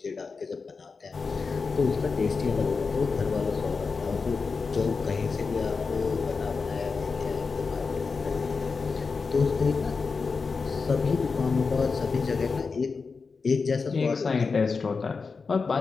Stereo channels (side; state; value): right; quieter; 4.7 dB